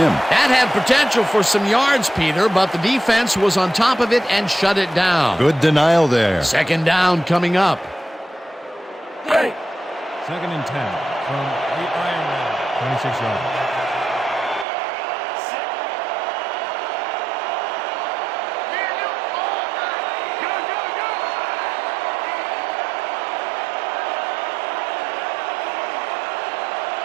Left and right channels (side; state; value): left; drops out; at 14.7 s